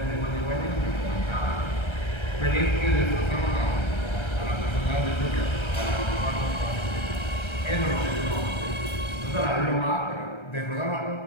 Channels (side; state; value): right; late; 1.3 ms